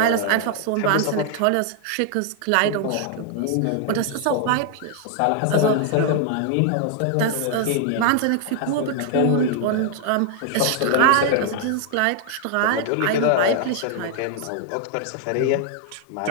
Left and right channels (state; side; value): different; both; correlation 0.00